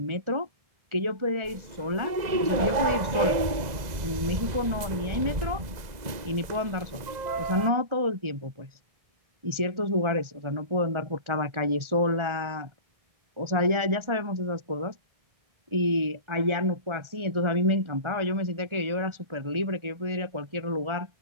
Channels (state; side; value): late; left; 1.9 ms